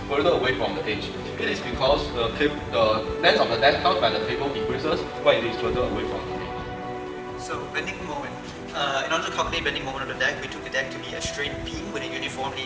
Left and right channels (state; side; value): identical; both; correlation 1.00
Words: further away from the edge. It is because the length of the deck held by the cable decreases when it is further away from the edge. So, bending moment. In order to calculate bending moment of the deck, we took the deck to be a straight beam with a uniformly